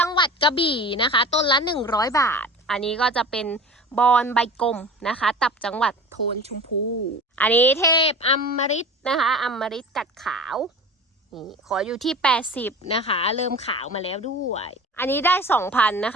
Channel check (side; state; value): both; normal; correlation 0.37